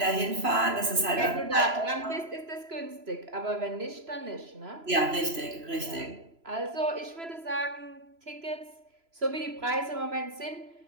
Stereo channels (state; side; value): late; left; 3.0 ms